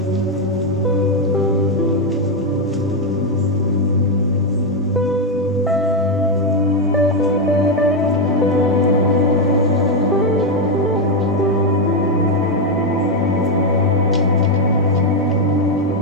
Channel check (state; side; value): normal; both; correlation 0.04